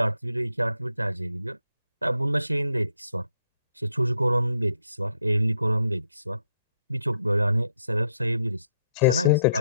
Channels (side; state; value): both; inverted; correlation -0.74